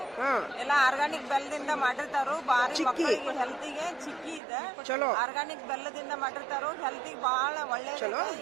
ಎಲ್ಲ ಆರ್ಗಾನಿಕ್ ಬೆಲ್ಲದಿಂದ ಮಾಡಿರ್ತಾರು. ಬಾರಿ ಮಕ್ಕಳಿಗೆ ಹೆಲ್ತಿಗೆ ಚಿಕ್ಕಿ ಇದೆ. ಚಲೋ ಆರ್ಗಾನಿಕ್ ಬೆಲ್ಲದಿಂದ ಮಾಡಿರ್ತಾರು. ಹೆಲ್ತಿಗೆ ಬಹಳ ಒಳ್ಳೆ.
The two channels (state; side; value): drops out; left; at 4.4 s